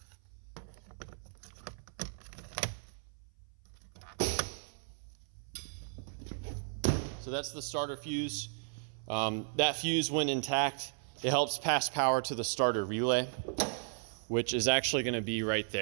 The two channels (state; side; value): silent; left; 54 dB below the other